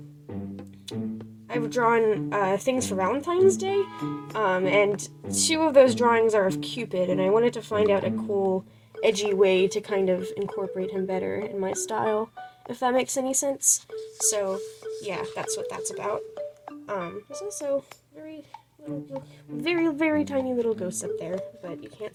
things for Valentine's Day, and two of those drawings are of Cupid, and I wanted to find out a cool, edgy way to kind of incorporate him better in my style, if that makes any sense. So, yeah, that's what that's about. There's also very tiny little ghosts up there, but you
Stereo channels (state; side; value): identical; both; correlation 1.00